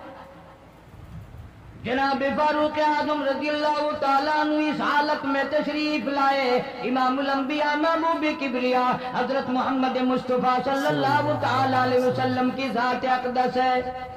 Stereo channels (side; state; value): both; identical; correlation 1.00